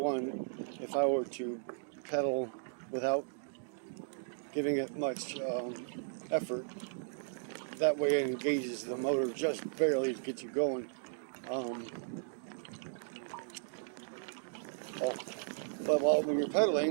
if I were to pedal without giving it much effort, that way it engages the motor just barely to get you going. But when you're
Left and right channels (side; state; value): left; silent; digital silence